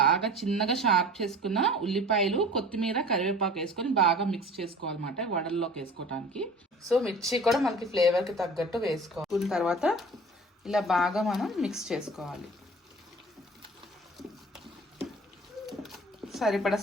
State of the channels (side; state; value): both; normal; correlation 0.43